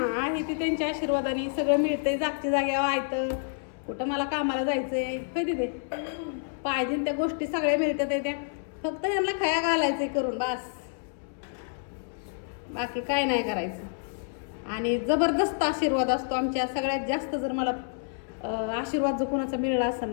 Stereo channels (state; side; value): silent; right; 59 dB below the other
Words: आहे ते त्यांच्या आशीर्वादाने सगळं मिळतंय, जागच्या जाग्यावर आहे. कुठं मला कामाला जायचंय कधी ते पाहिजे त्या गोष्टी सगळ्या मिळतात त्या, फक्त ह्यांना खया घालायचंय करून बस, बाकी काय नाही करायचं. आणि जबरदस्त आशीर्वाद असतो आमच्या. सगळ्यात जास्त जर मला आशीर्वाद जो कोणाचा मिळाला असेल